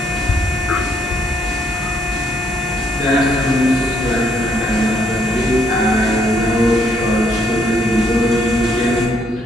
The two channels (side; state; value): both; normal; correlation 0.71